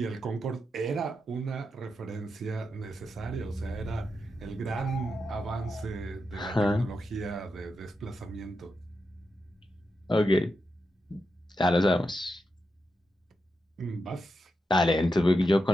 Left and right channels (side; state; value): both; normal; correlation 0.87